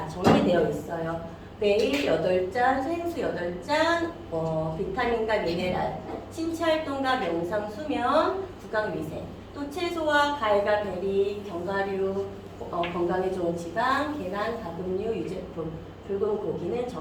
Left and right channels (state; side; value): identical; both; correlation 1.00